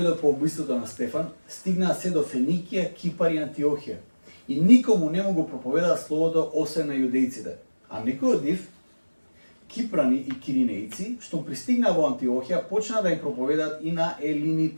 по убиството на Стефан, стигнаа се до Феникија, Кипар и Антиохија. И никому не му го проповедаат словото освен на јудејците. А некои од нив, кипрани и киринејци, што пристигнаа во Антиохија, почнаа да им проповедаат и на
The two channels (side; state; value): both; inverted; correlation -1.00